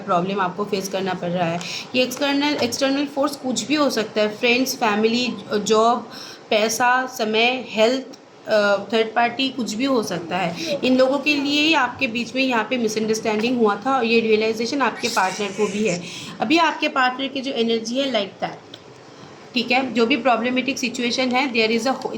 आपको फेस करना पड़ रहा है। ये एक्सटर्नल फोर्स कुछ भी हो सकता है, फ्रेंड्स, फैमिली, जॉब, पैसा, समय, हेल्थ, थर्ड पार्टी, कुछ भी हो सकता है। इन लोगों के लिए ही आपके बीच में यहाँ पे मिसअंडरस्टैंडिंग हुआ था, और ये रियलाइजेशन आपके पार्टनर को भी है। अभी आपके पार्टनर की जो एनर्जी है लाइक दैट। ठीक है, जो भी प्रॉब्लमेटिक सिचुएशन है, देयर इज़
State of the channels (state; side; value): identical; both; correlation 1.00